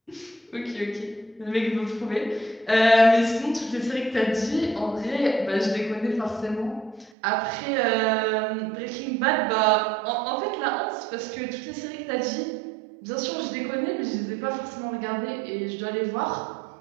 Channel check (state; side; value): drops out; left; at 7.1 s